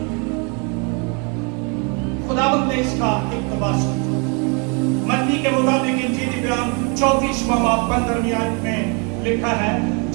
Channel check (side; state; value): left; quieter; 34.0 dB